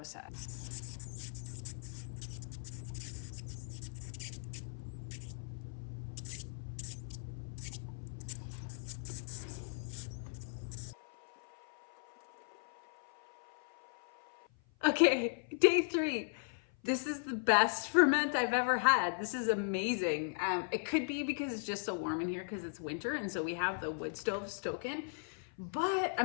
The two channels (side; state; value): right; silent; 53 dB below the other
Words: Okay, day 3. This is the best ferment I've ever had. This is amazing. It could be because it's just so warm in here because it's winter and so we have the wood stove stoking. But